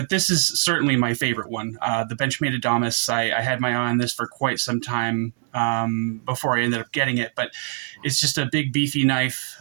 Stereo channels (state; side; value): silent; left; digital silence